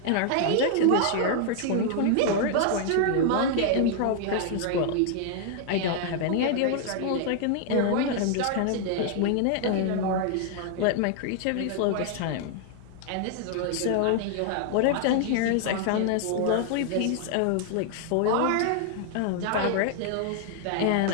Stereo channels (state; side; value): different; both; correlation 0.00